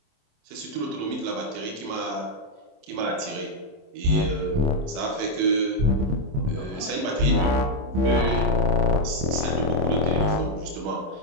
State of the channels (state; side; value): late; left; 27 ms